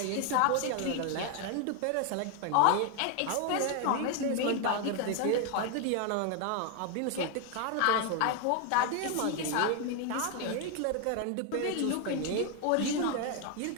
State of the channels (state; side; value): different; both; correlation 0.01